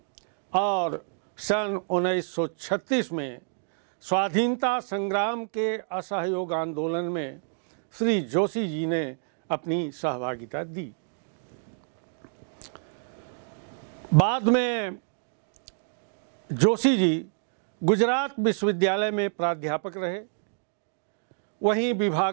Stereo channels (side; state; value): left; silent; digital silence